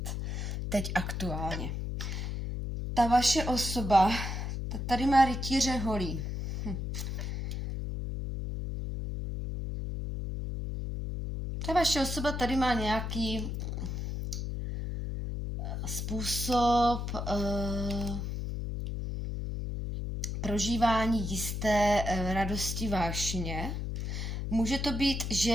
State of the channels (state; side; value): noise; left; hum, 3 dB below the sound